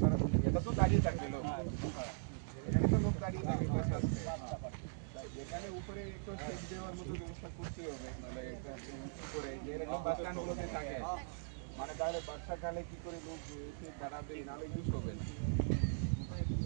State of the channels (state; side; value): silent; left; digital silence